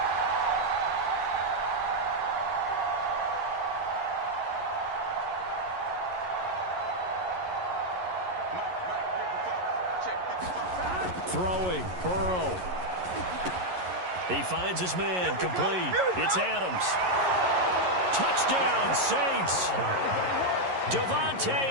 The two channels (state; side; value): late; left; 11 ms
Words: Throwing, Burrow. He finds his man, complete. It's Adams. Touchdown, Saints. Davante